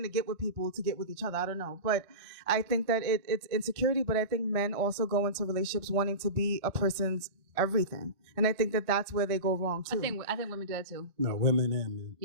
to get with people to get with each other. I don't know, but I think that it's insecurity. But I think men also go into relationships wanting to be a person's everything, and I think that that's where they go wrong too. I think women do that too. No, women and men.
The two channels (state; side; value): late; left; 1.5 ms